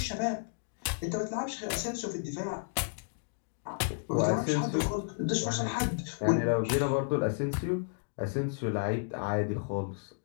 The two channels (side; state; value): right; silent; digital silence